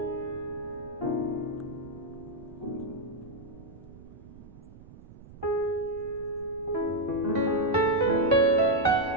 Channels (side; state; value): right; noise; rumble, 19 dB below the sound